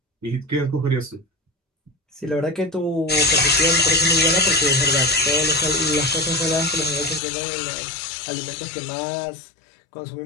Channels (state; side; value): drops out; right; at 7.2 s